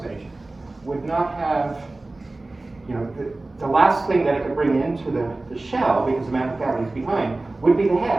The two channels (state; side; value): quieter; left; 3.0 dB